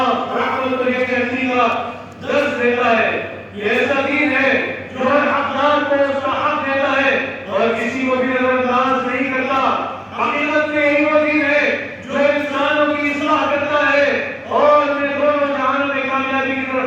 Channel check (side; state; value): both; identical; correlation 1.00